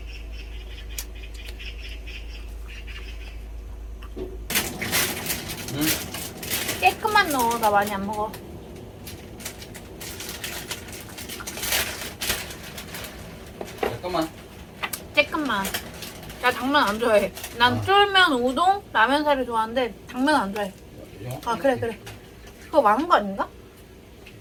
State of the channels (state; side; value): identical; both; correlation 1.00